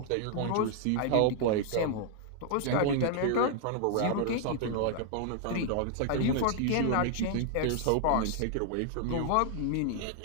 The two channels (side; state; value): both; different; correlation 0.00